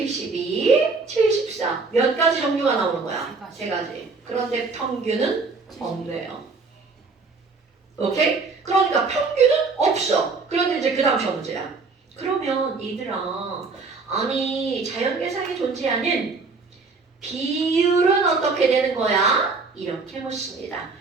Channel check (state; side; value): quieter; left; 4.2 dB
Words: 74 몇 가지 종류가 나오는 거야? 세 가지. 그런데 평균은 없네요. 오케이? 그러니까 평균은 없어. 그런데 이제 그 다음 시험 문제야. 그러면 얘들아 아니 자연계상에 존재하는 비율은 어떻게 되는 거야? 이렇게 묻습니다.